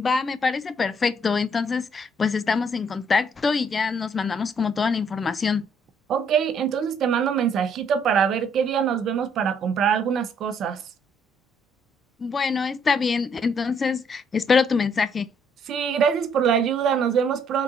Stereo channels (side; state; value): both; normal; correlation 0.67